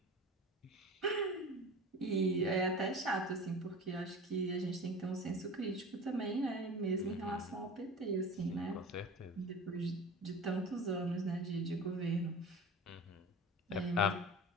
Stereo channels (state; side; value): normal; both; correlation 0.36